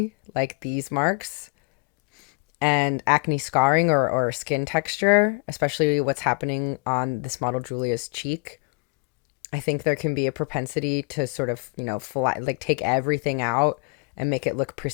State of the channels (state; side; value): quieter; right; 31.8 dB